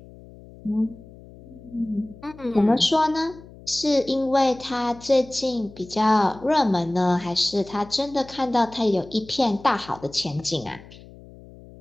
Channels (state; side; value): noise; left; hum, 20 dB below the sound